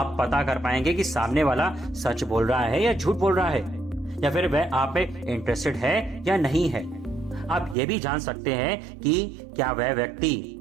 पता कर पाएंगे कि सामने वाला सच बोल रहा है या झूठ बोल रहा है, या फिर वह आप पे इंटरेस्टेड है या नहीं है। आप ये भी जान सकते हैं कि क्या वह व्यक्ति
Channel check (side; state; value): left; drops out; at 7.8 s